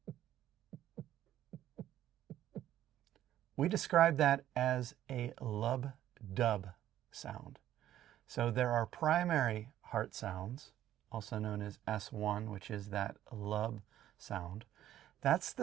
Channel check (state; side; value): quieter; left; 12.3 dB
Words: We describe that as a lub-dub sound. So there are primary heart sounds, also known as S1, which is that lub sound. That's